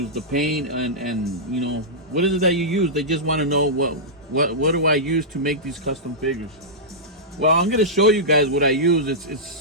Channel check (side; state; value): both; normal; correlation -0.13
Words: The paint and you know, what is it that you use? They just want to know what do I use to make these custom figures. Well, I'm gonna show you guys what I